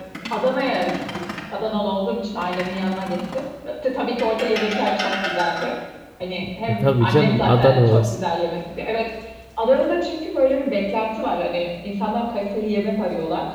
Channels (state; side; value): identical; both; correlation 1.00